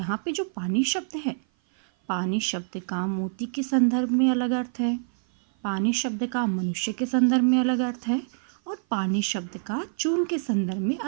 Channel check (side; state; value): left; silent; 56 dB below the other